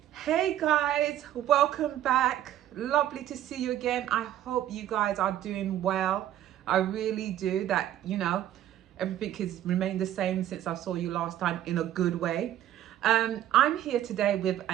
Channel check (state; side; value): quieter; left; 12.0 dB